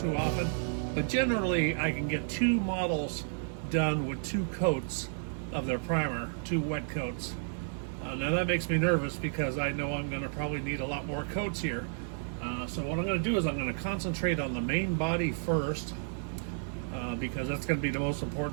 often, but generally I can get 2 models done with 2 coats of their primer, 2 wet coats. Now that makes me nervous because I know I'm going to probably need a lot more coats here. So what I'm going to do is I'm going to concentrate on the main body first, because that's going to be the most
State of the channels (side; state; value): left; silent; 57 dB below the other